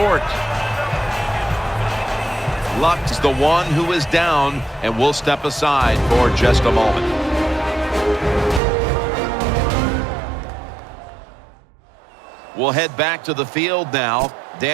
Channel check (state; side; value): drops out; left; at 8.6 s